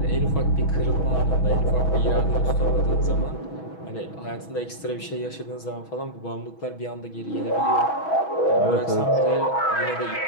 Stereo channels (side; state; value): right; late; 6.2 ms